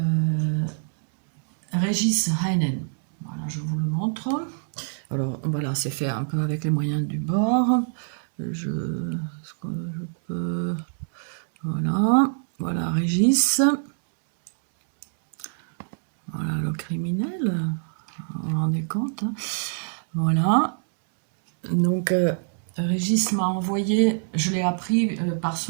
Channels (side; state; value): left; silent; digital silence